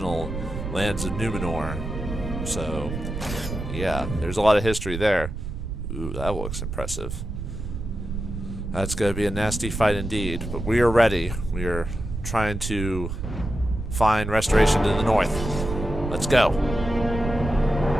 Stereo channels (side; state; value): right; noise; rumble, 6 dB below the sound